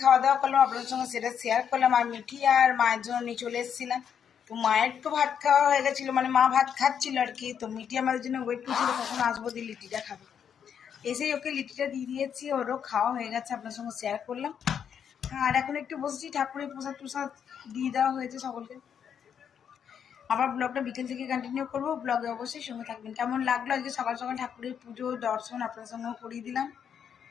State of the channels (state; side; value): quieter; right; 8.0 dB